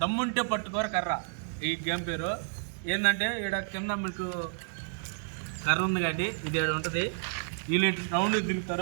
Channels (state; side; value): silent; left; 57 dB below the other